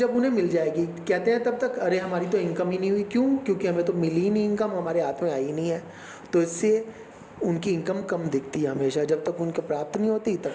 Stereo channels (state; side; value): identical; both; correlation 1.00